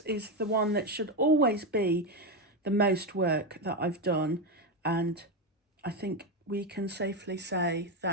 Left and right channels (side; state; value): both; normal; correlation 0.11